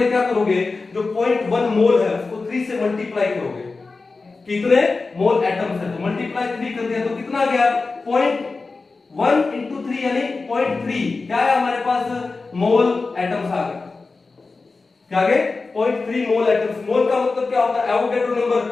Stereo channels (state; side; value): quieter; right; 3.9 dB